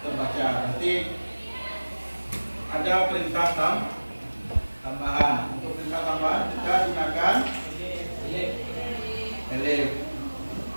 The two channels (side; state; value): both; inverted; correlation -1.00